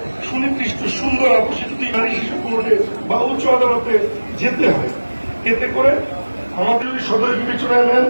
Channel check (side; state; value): both; inverted; correlation -1.00